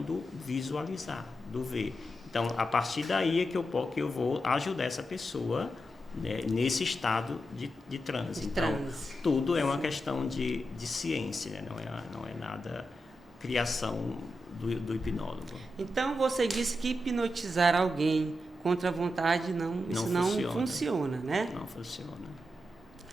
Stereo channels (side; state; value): both; normal; correlation 0.88